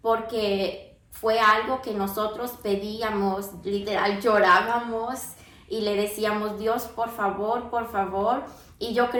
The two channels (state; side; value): identical; both; correlation 1.00